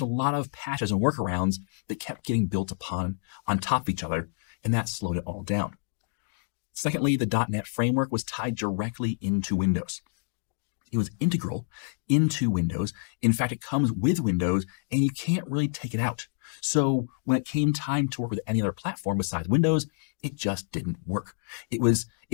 a lot of patches and workarounds that kept getting built upon on top of each other, and that slowed it all down. Secondly, the .NET framework was tied directly into Windows. It was integral into Windows. In fact, it comes with Windows, and you can't really take it out. So when it came time to work with any other platform besides Windows, it just didn't work. It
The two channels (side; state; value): right; silent; digital silence